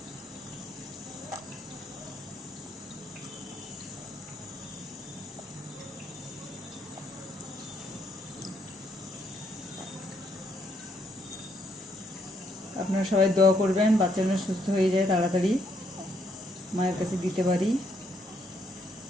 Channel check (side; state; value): both; normal; correlation 0.72